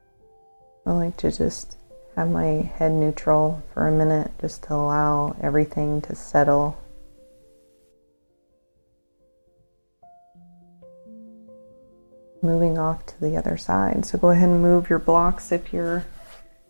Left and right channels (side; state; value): both; inverted; correlation -1.00